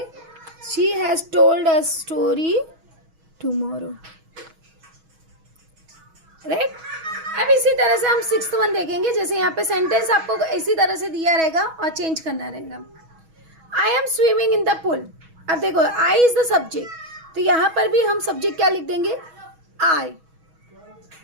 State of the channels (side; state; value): left; late; 6.2 ms